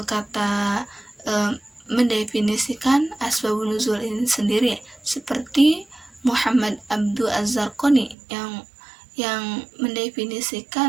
asbabun nuzul ini sendiri, seperti Muhammad Abdul Az-Zarqani yang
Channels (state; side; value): drops out; left; at 8.2 s